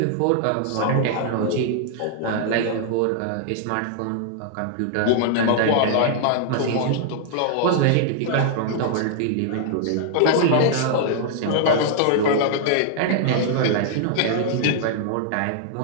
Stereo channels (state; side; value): different; both; correlation -0.01